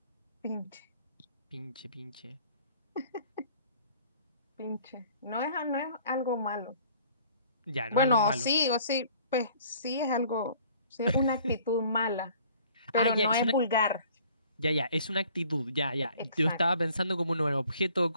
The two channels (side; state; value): both; inverted; correlation -0.55